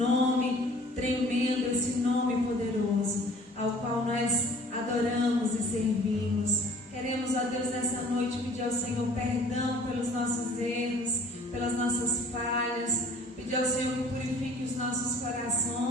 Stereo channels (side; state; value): both; normal; correlation 0.52